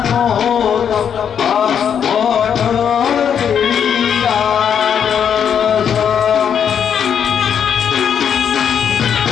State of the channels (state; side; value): quieter; right; 8.1 dB